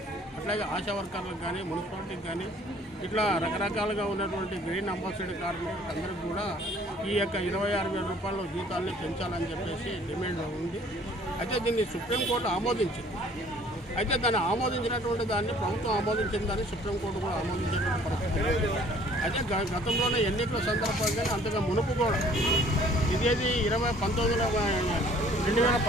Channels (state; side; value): normal; both; correlation 0.55